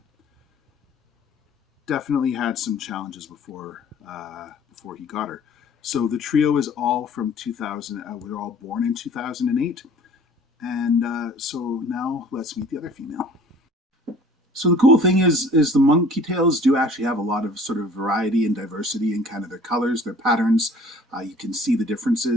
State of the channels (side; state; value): both; normal; correlation 0.50